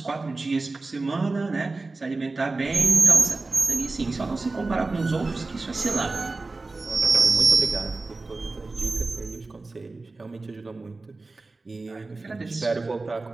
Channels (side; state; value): left; quieter; 3.5 dB